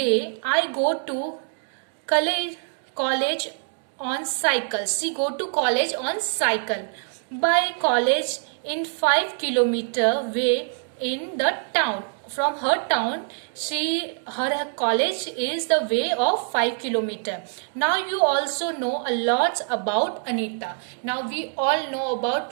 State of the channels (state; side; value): silent; left; 58 dB below the other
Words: I go to college on cycle. She go to college on cycle. By college in 5 kilometer way in the town. From her town, her college is the way of 5 kilometer. Now you also know a lot about Anita. Now we all know